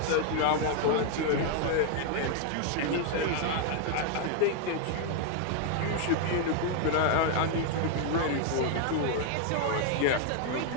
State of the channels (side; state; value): both; different; correlation 0.00